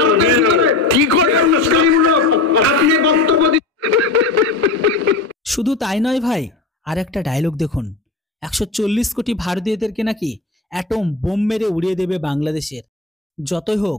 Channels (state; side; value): quieter; right; 3.3 dB